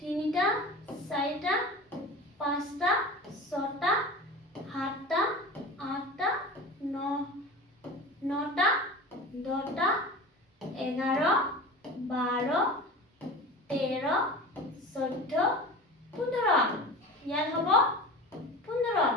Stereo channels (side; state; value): both; normal; correlation 0.34